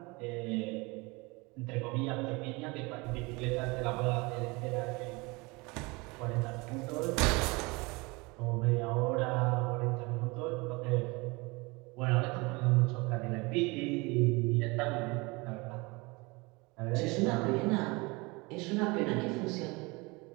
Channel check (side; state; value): left; quieter; 25.7 dB